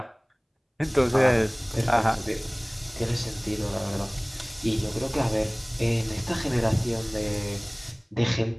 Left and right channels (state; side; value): identical; both; correlation 1.00